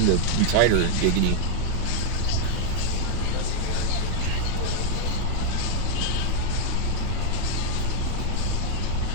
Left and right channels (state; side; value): different; both; correlation 0.00